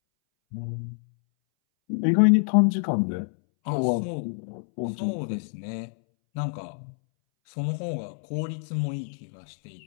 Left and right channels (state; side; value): silent; right; 60 dB below the other